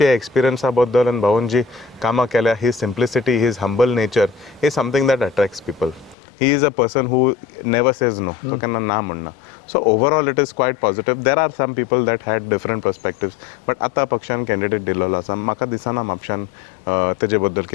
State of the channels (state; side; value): drops out; right; at 6.2 s